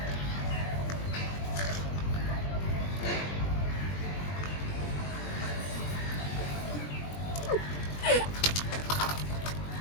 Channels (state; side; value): late; right; 20 ms